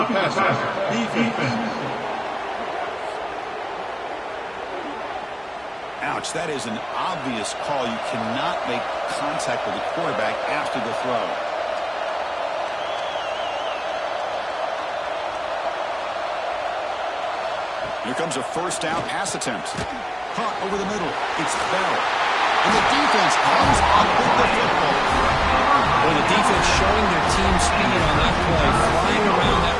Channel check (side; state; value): both; identical; correlation 1.00